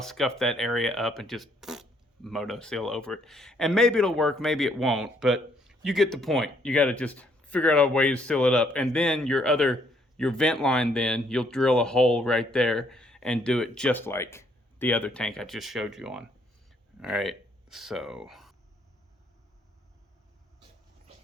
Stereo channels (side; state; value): both; normal; correlation 0.68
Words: scuff that area up and just Moto Seal over it. And maybe it'll work, maybe it won't, but you get the point. You got to just figure out a way to seal it up. And then your vent line, then you'll drill a hole right there and do it just like the other tank I just showed you on. All right, so.